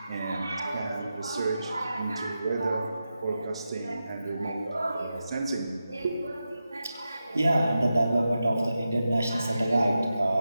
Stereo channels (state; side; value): inverted; both; correlation -0.90